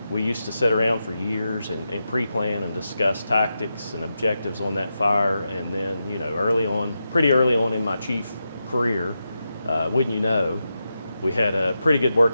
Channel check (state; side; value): inverted; both; correlation -0.88